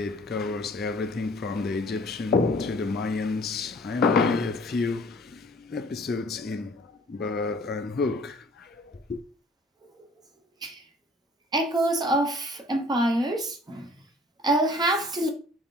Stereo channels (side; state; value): both; normal; correlation 0.52